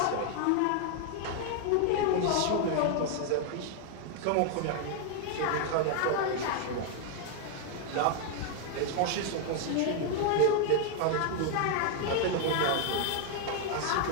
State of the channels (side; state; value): both; different; correlation 0.00